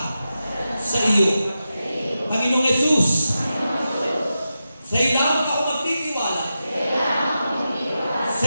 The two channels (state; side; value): inverted; both; correlation -0.90